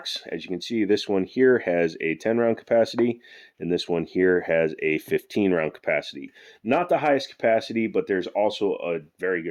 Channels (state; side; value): identical; both; correlation 1.00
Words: As you can see, this one here has a 10 round capacity, and this one here has a 15 round capacity. Not the highest capacity, but there's also a very